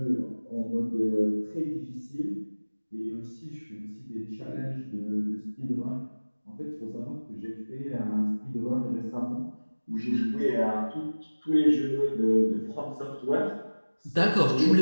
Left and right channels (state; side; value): inverted; both; correlation -1.00